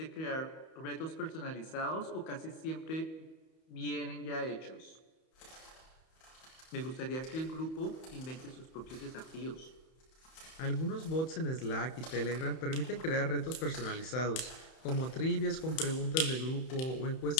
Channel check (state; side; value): late; right; 31 ms